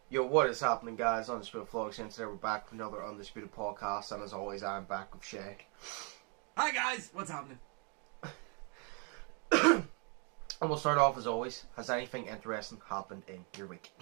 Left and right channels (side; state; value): left; quieter; 36.4 dB